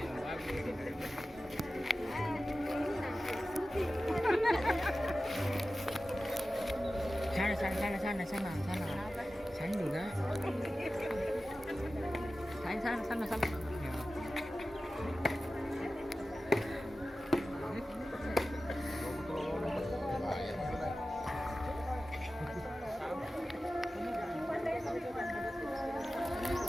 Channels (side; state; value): both; normal; correlation 0.95